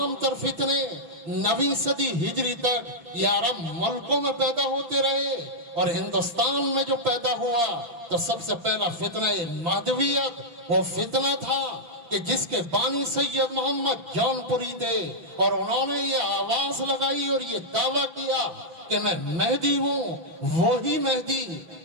تر فتنے 9ویں صدی ہجری تک یہ عرب ملکوں میں پیدا ہوتے رہے، اور ہندوستان میں جو پیدا ہوا تو سب سے پہلا فتنہ مہدویت وہ فتنہ تھا کہ جس کے بانی سید محمد جون پوری تھے، اور انہوں نے یہ آواز لگائی اور یہ دعویٰ کیا کہ میں مہدی ہوں، وہی مہدی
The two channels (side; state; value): left; late; 6.0 ms